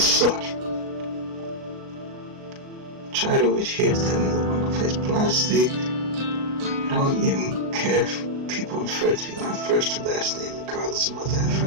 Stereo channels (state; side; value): late; left; 37 ms